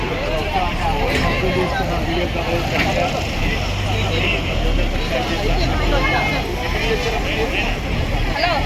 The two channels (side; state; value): both; identical; correlation 1.00